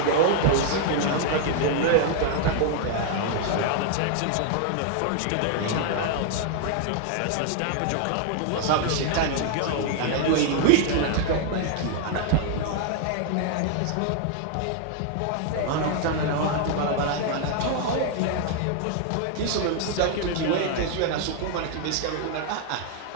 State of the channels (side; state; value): both; different; correlation 0.00